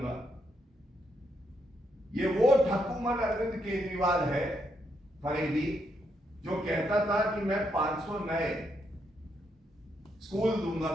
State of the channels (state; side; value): normal; both; correlation 0.78